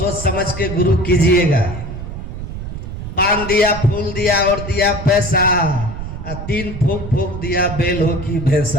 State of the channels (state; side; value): noise; right; rumble, 8 dB below the sound